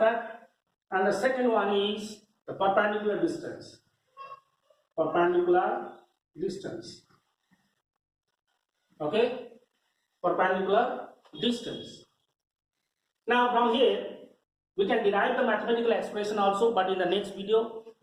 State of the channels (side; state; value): both; identical; correlation 1.00